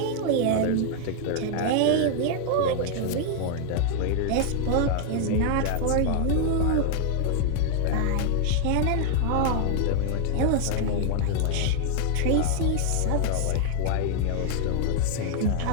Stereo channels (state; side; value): different; both; correlation 0.00